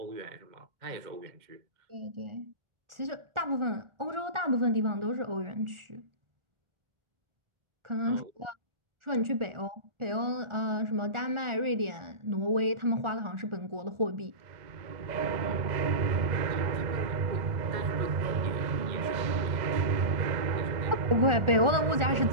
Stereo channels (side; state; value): left; late; 1.4 ms